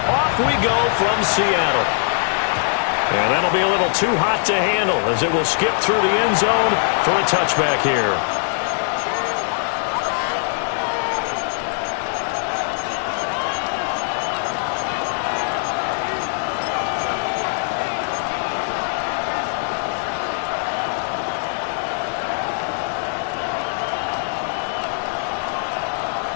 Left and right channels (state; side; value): silent; right; digital silence